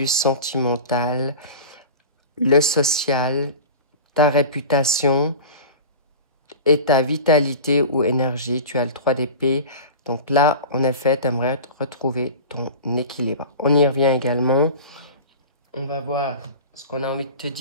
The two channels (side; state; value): both; inverted; correlation -0.34